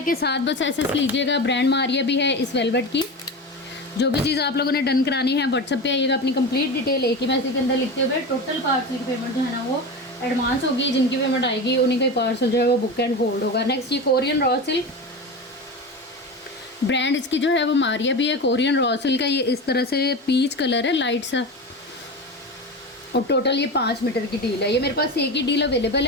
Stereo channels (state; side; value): normal; both; correlation 0.25